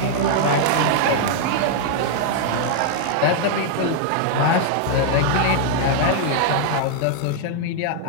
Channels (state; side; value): different; both; correlation -0.01